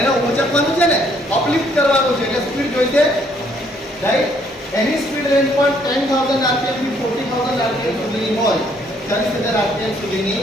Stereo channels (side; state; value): both; normal; correlation 0.66